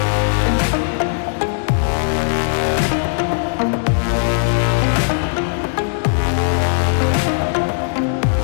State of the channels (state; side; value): silent; right; 67 dB below the other